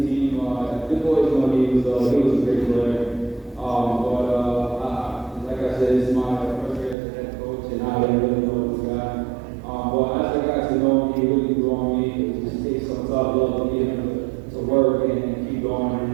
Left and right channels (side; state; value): left; drops out; at 7.0 s